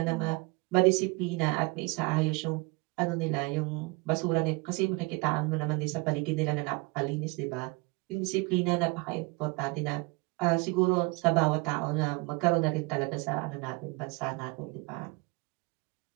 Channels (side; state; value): left; quieter; 27.0 dB